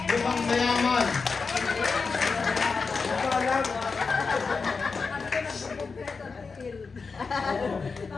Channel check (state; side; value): quieter; right; 4.7 dB